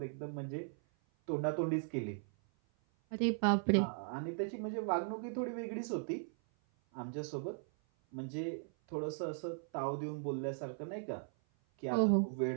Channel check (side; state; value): left; silent; 53 dB below the other